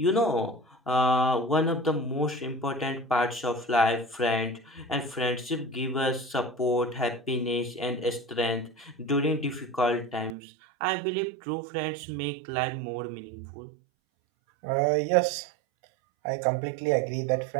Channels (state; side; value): drops out; left; at 10.4 s